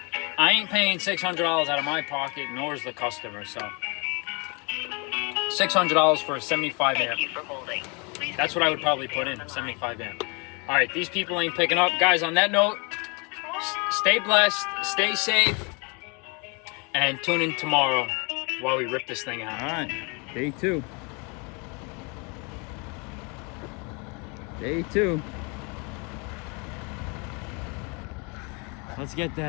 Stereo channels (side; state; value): right; quieter; 31.8 dB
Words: I ain't paying $600 out of my pocket, nor is the customer, so... $600 for a 75 amp. Thank you for holding. Please That's what I would probably put in, 75 amp. All right, these people ain't picking up. Guys, on that note, stay blessed, stay safe, and tune in tomorrow while we rip this thing out. All right, day 2. Day 2. Let's get